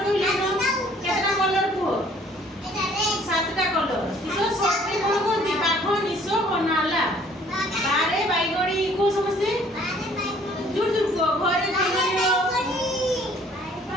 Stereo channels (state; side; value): normal; both; correlation 0.58